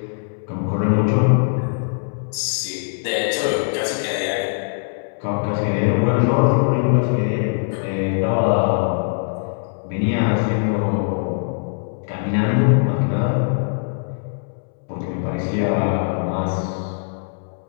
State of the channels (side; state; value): right; silent; 65 dB below the other